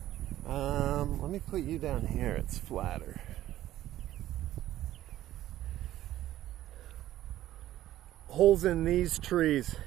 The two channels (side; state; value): left; quieter; 13.7 dB